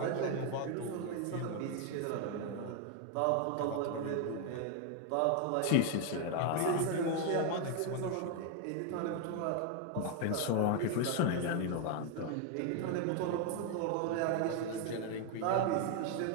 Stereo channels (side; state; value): both; different; correlation 0.01